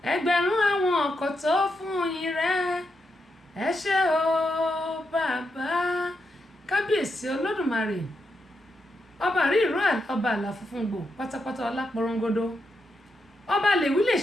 ẹgbẹ̀rún àwọn ọkọ̀ tó fún yín rẹ̀, ẹ ṣé o bàbá, kábíyèsí Olódùmarè. Ọba rí ìró ọba àlà funfun gbò pátápátá ọlá porongodo ọba lè wí lè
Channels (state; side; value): normal; both; correlation 0.84